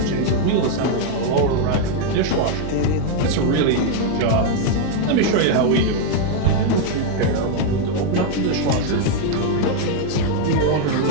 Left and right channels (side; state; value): both; different; correlation 0.00